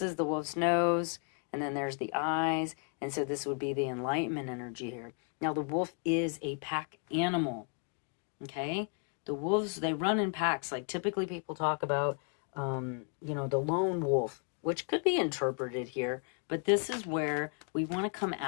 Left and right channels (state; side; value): quieter; right; 39.3 dB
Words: is the wolf's nose. And then there's the eyes. And so this would be the enlightenment energy here. Now, the wolf is a pack animal. Okay? The wolves, they run in packs. Like typically people talk about, you know, the lone wolf, which could be interpreted here. But this is where we want to come